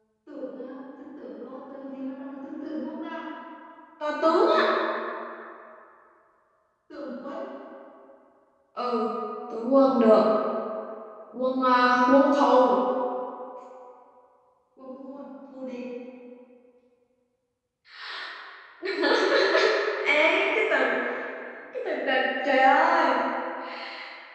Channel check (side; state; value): both; identical; correlation 1.00